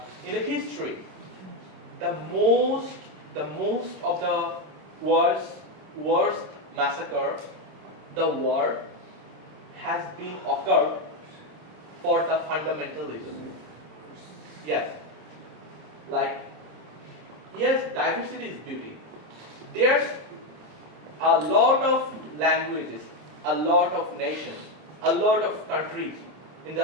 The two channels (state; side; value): late; left; 27 ms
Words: in the history, the most of the worst massacre, the war has been occurred for the fundamentalism. Yes, diversity is beauty. There's a lot of languages, a lot of nations, a lot of countries